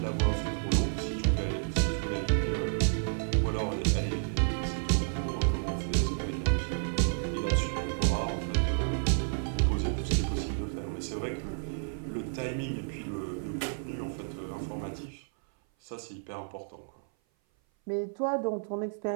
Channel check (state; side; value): silent; left; 56 dB below the other